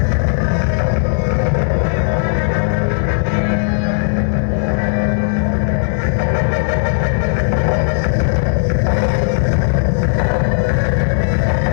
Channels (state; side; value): silent; right; digital silence